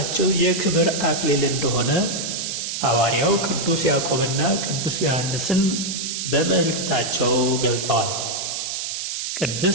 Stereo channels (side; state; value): right; noise; hiss, 4 dB below the sound